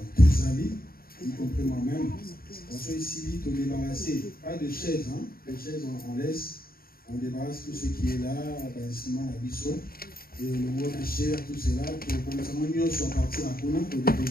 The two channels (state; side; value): late; right; 0.43 ms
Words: tous les amis, y compris moi-même. On soit ici, on débarrasser, pas de chaises, hein. Les chaises on laisse. On débarrasse tout ce qui est là, l'instrument, la biseau, et le mot de chair, tout cela, pour que nous soit parti à Kona, pour